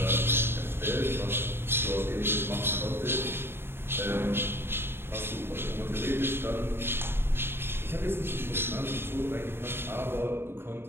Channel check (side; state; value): left; late; 0.11 ms